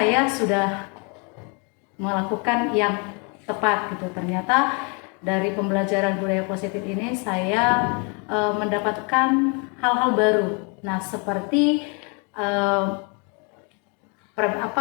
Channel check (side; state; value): right; quieter; 34.3 dB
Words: sudah melakukan yang tepat gitu. Ternyata dari pembelajaran budaya positif ini saya mendapatkan hal-hal baru. Nah, seperti